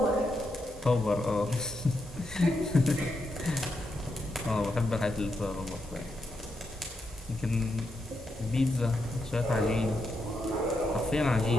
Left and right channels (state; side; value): normal; both; correlation 0.83